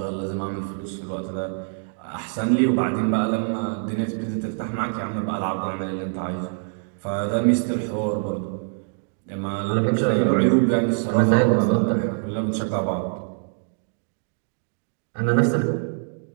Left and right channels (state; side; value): silent; left; digital silence